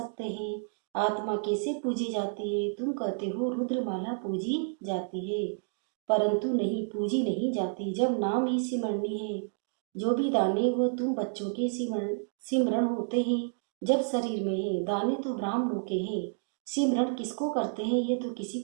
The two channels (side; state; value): left; silent; digital silence